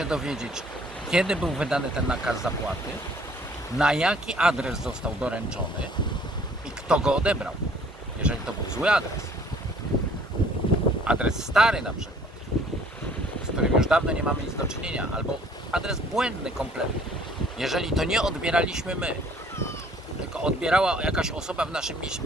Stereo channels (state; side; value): normal; both; correlation 0.57